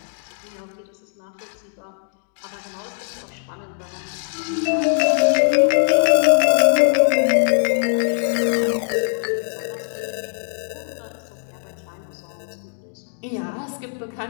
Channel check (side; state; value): right; silent; digital silence